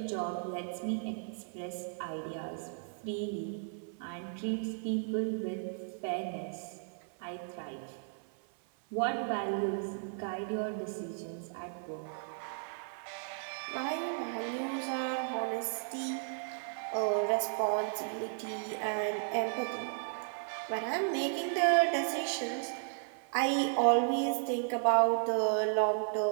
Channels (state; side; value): silent; left; 55 dB below the other